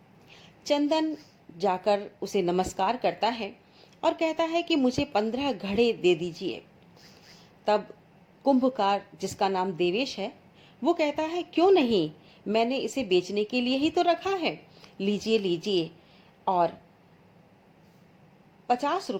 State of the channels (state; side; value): identical; both; correlation 1.00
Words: चंदन जाकर उसे नमस्कार करता है और कहता है कि मुझे 15 घड़े दे दीजिए। तब कुंभकार, जिसका नाम देवेश है, वो कहता है क्यों नहीं, मैंने इसे बेचने के लिए ही तो रखा है, लीजिए लीजिए, और 50